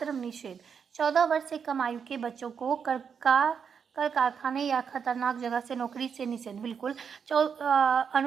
निषेध। 14 वर्ष से कम आयु के बच्चों को कर कारखाने या खतरनाक जगह से नौकरी से निषेध। बिल्कुल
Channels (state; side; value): quieter; left; 6.8 dB